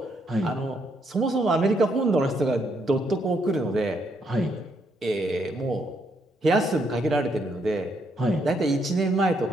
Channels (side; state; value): both; normal; correlation 0.74